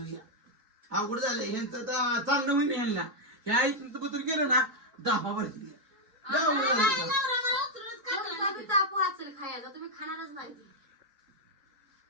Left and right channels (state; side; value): late; left; 2.5 ms